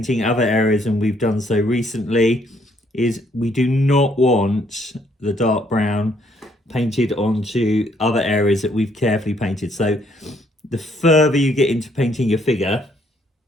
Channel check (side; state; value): both; normal; correlation 0.68